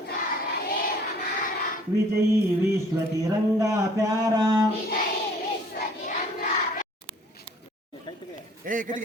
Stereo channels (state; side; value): normal; both; correlation 0.56